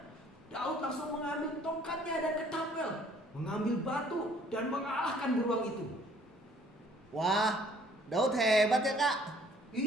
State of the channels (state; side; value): normal; both; correlation 0.59